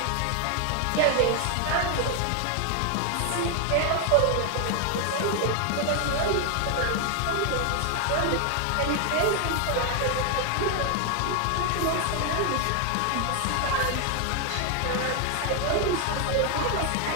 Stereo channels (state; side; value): different; both; correlation 0.00